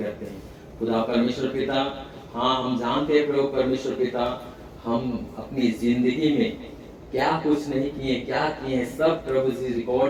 हैं खुदा परमेश्वर पिता। हाँ, हम जानते हैं प्रभु परमेश्वर पिता, हम अपनी जिंदगी में क्या कुछ नहीं किए, क्या किए हैं, सब प्रभु जी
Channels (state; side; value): identical; both; correlation 1.00